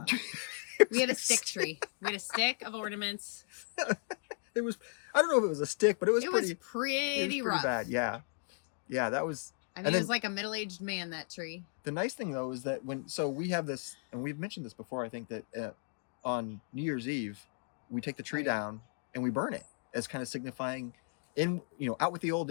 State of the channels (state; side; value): silent; right; 54 dB below the other